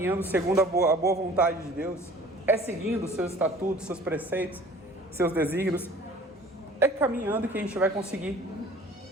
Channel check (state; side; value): normal; both; correlation 0.48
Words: segundo a boa vontade de Deus, é seguindo os seus estatutos, seus preceitos, seus desígnios. É caminhando que a gente vai conseguir